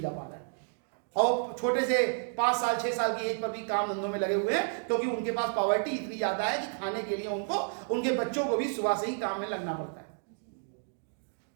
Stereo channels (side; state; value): left; silent; 57 dB below the other